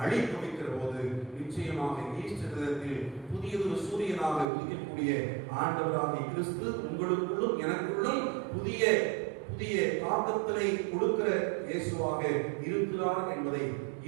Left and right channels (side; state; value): left; drops out; at 4.5 s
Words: அழித்து வைக்கிற போது நிச்சயமாக ஈஸ்டர் தினத்தில் புதியதொரு சூரியனாக உதிக்கக்கூடிய ஆண்டவராகிய கிறிஸ்து உங்களுக்குள்ளும் எனக்குள்ளும் புதிய தாக்கத்தினை கொடுக்கிற இயேசுவாக